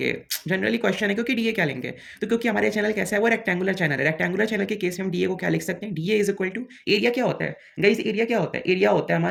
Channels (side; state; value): both; identical; correlation 1.00